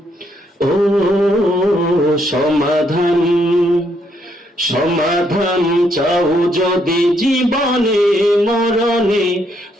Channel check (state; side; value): normal; both; correlation 0.73